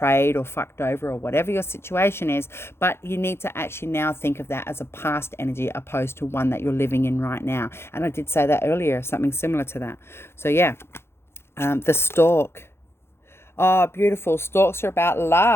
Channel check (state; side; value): late; right; 0.12 ms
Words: or fucked over or whatever your situation is, but you need to actually now think of that as a past energy opposed to one that you're living in right now. And I did say that earlier, something similar to that. So yeah, the stork. Oh, beautiful. Stalks are about